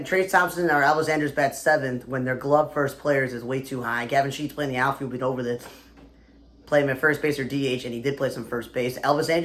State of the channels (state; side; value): identical; both; correlation 1.00